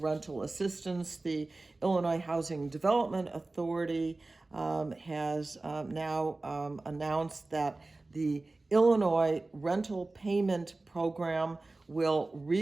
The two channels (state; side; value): quieter; left; 3.2 dB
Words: assistance. The Illinois Housing Development Authority has now announced that the Illinois Rental Payment Program will